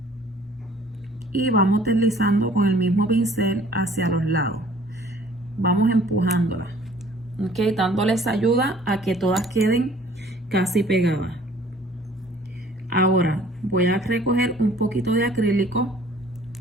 y vamos deslizando con el mismo pincel hacia los lados, vamos empujándola, ok, dándoles ayuda a que todas queden casi pegadas. Ahora voy a recoger un poquito de acrílico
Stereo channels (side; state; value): both; normal; correlation 0.54